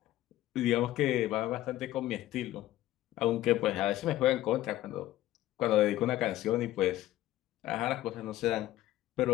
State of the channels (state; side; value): quieter; right; 14.9 dB